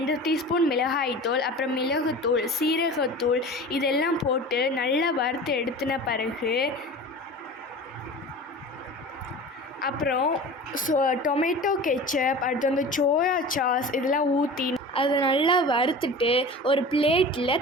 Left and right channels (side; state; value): both; normal; correlation 0.36